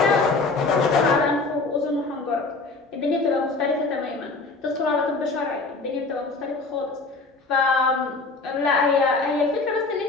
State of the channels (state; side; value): quieter; right; 3.7 dB